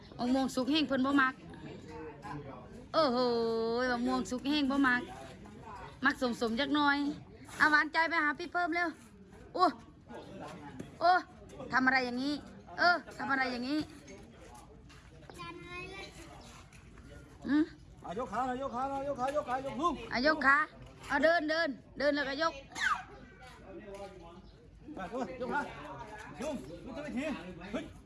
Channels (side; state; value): both; identical; correlation 1.00